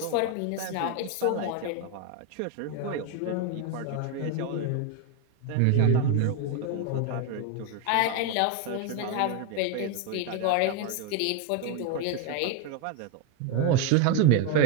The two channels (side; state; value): both; different; correlation 0.01